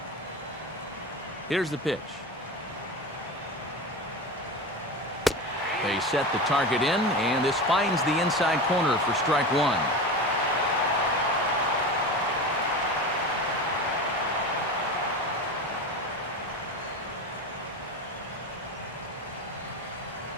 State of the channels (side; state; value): both; normal; correlation 0.26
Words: Here's the pitch. They set the target in, and this finds the inside corner for strike 1.